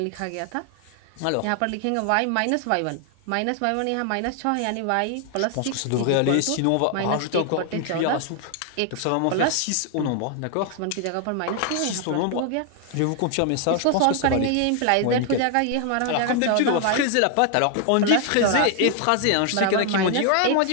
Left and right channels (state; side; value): different; both; correlation 0.00